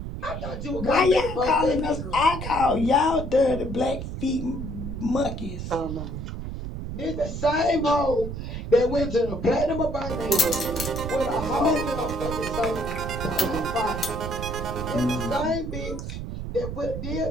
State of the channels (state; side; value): noise; right; rumble, 6 dB below the sound